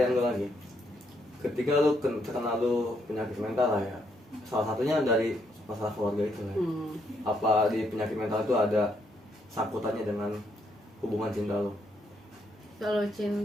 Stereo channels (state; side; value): normal; both; correlation 0.75